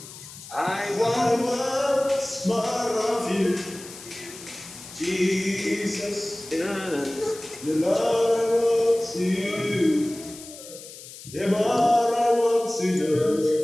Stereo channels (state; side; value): noise; left; hiss, 16 dB below the sound